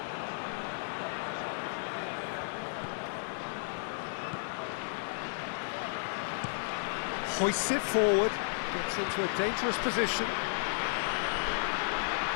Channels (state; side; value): silent; right; digital silence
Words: Hoists it forward, gets into a dangerous position.